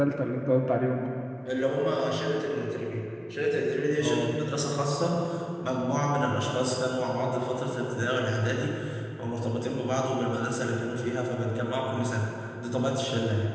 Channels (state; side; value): identical; both; correlation 1.00